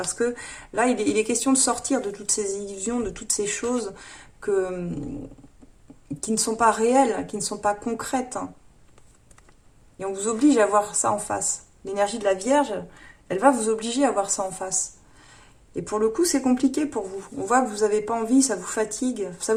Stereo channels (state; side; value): identical; both; correlation 1.00